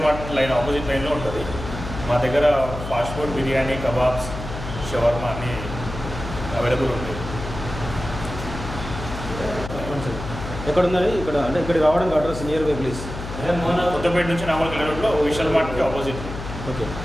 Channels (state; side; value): noise; left; hum, 9 dB below the sound